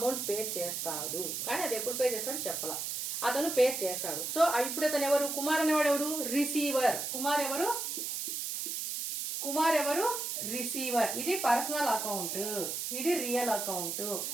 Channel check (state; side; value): noise; right; hiss, 3 dB below the sound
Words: పే చేస్తాడు. కానీ అది ఎప్పుడు పే చేస్తాడు చెప్పాల, అతను పే చేస్తాడు. సో ఇప్పుడు అతను ఎవరు, కుమార్ అనేవాడు ఎవరు, రిసీవర్. కుమార్ ఎవరు, కుమార్ ఎవరు, రిసీవర్. ఇది పర్సనల్ అకౌంట్, ఇది రియల్ అకౌంట్.